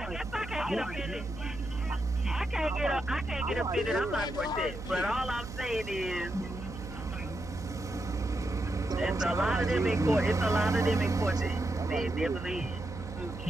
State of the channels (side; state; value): right; noise; hum, 11 dB below the sound